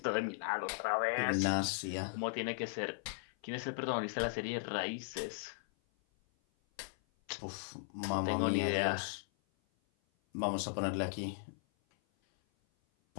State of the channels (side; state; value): right; silent; 53 dB below the other